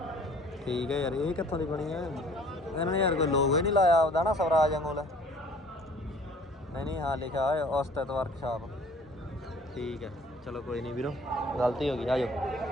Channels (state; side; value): normal; both; correlation 0.53